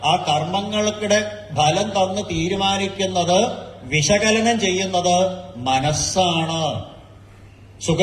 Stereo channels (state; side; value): identical; both; correlation 1.00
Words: ആ കർമ്മങ്ങളുടെ ഫലം തന്ന് തീരുമാനിക്കുന്നത്, വിശകലനം ചെയ്യുന്നത് മനസ്സാണ്.